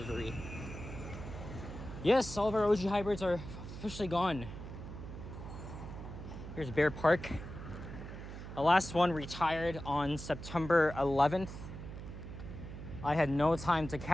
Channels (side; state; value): right; noise; hum, 10 dB below the sound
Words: Yes, all of our OG hybrids are officially gone. Here's Bear Park. The last one retired on September 11th. I had no time to